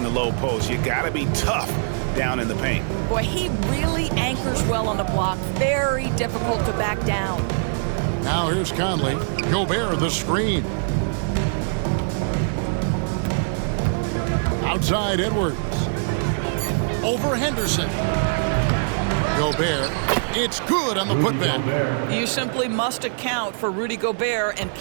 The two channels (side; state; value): left; silent; digital silence